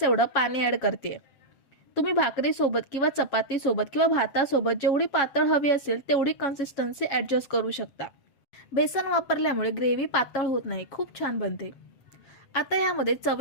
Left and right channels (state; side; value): late; right; 7.3 ms